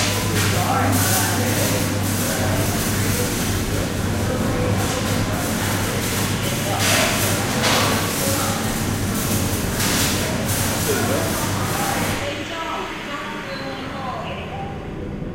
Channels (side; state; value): both; identical; correlation 1.00